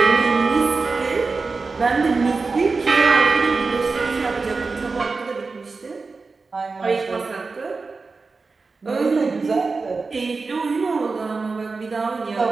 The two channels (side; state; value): left; quieter; 4.2 dB